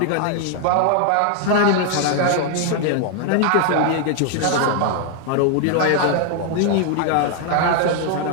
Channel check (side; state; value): both; different; correlation 0.00